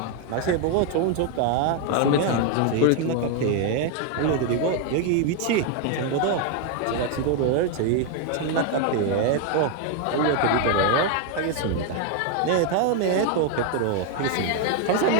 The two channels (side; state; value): both; different; correlation 0.01